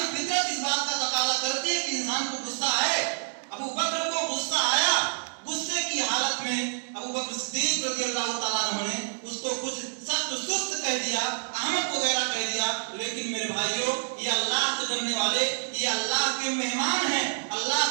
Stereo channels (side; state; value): left; silent; digital silence